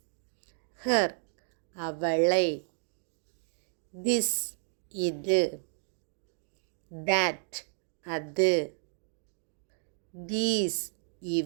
ஹர், அவளை, திஸ், இது, தட், அது, தீஸ்,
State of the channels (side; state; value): left; silent; digital silence